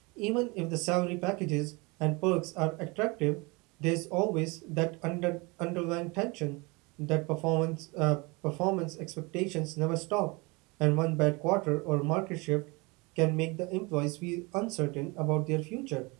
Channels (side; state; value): left; quieter; 26.8 dB